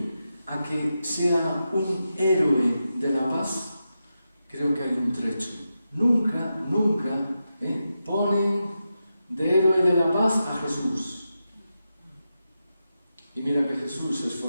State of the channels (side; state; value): both; inverted; correlation -0.89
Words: a que sea un héroe de la paz, creo que hay un trecho. Nunca ponen de héroe de la paz a Jesús. Y mira que Jesús se